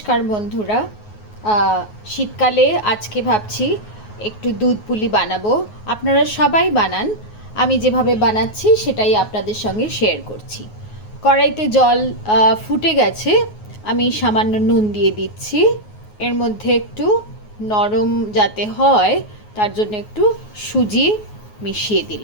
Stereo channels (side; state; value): right; late; 9.5 ms